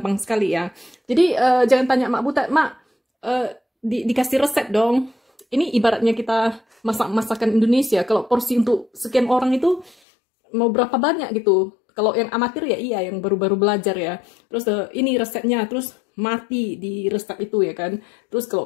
sekali ya. Jadi jangan tanya Mak Butet, Mak dikasih resep dong. Ini ibaratnya kita masak masakan Indonesia, kalau porsi untuk sekian orang itu mau berapa banyak gitu. Kalau yang amatir ya iya, yang baru-baru belajar ya. Terus ini resepnya, terus mati di resep itu ya kan. Terus kalau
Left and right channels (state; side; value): drops out; right; at 10.0 s